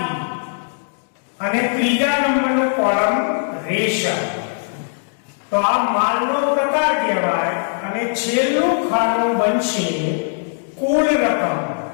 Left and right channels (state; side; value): silent; right; 66 dB below the other